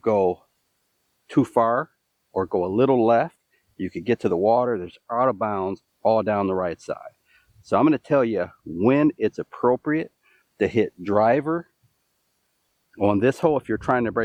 too far or go a little left, you could get to the water. There's out of bounds all down the right side. So I'm going to tell you when it's appropriate to hit driver on this hole if you're trying to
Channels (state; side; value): identical; both; correlation 1.00